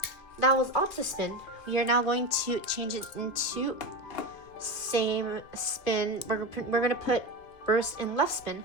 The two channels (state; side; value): late; right; 2.5 ms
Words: that was Optispin. We are now going to change it into same spin. We're gonna put Burst in left spin.